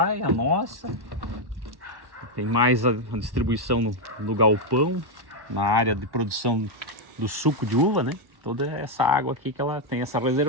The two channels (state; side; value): late; left; 1.1 ms